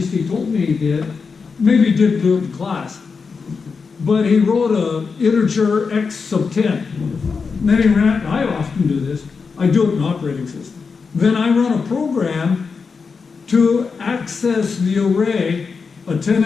he told me he did, maybe he didn't do it in class, but he wrote a integer x sub 10. And then he ran, I often do this, I do it in operating system. Then I run a program to access the array, a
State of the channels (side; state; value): right; quieter; 5.1 dB